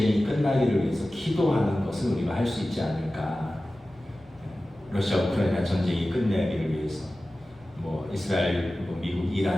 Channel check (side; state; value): both; normal; correlation 0.96